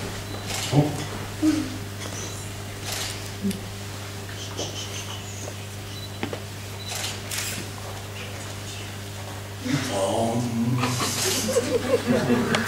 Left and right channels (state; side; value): identical; both; correlation 1.00